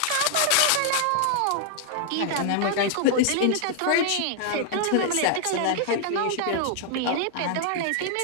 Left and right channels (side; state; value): both; different; correlation -0.01